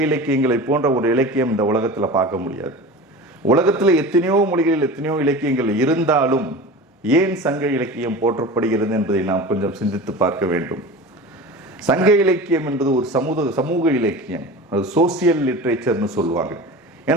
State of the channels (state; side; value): normal; both; correlation 0.33